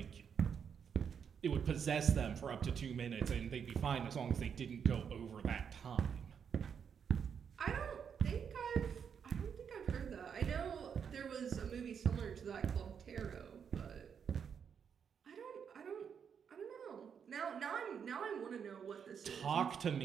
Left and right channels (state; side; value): quieter; left; 7.2 dB